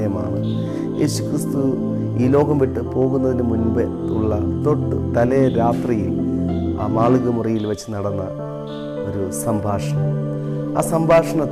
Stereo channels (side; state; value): both; identical; correlation 1.00